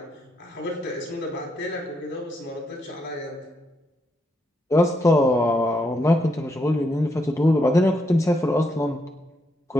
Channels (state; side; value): normal; both; correlation 0.79